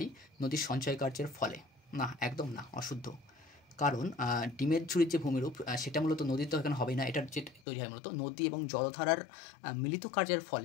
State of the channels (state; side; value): drops out; right; at 7.6 s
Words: নদীর সঞ্চয় কার্যের ফলে? না, একদম না, অশুদ্ধ। কারণ ডিমের ঝুড়ির যে ভূমিরূপ সেটা মূলত নদীর তো এখানে হবেই না, এটার যে তৈরি হয় মূলত নদী এবং জলধারার মিলিত কার্যের